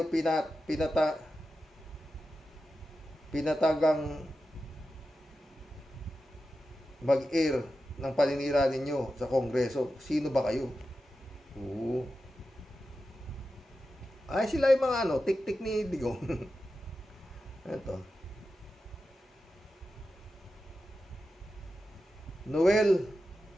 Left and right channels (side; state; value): both; normal; correlation 0.91